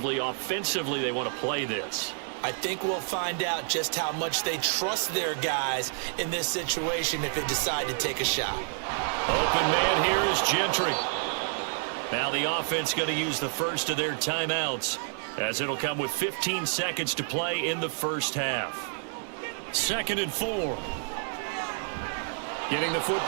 offensively they want to play this. I think we'll find out just how much they trust their guys in this situation if they decide to take a shot. Open man here is Gentry. Now the offense going to use the first of their timeouts, as it'll come with 15 seconds to play in the first half. 2nd and 4. Getting the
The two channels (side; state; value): left; silent; 59 dB below the other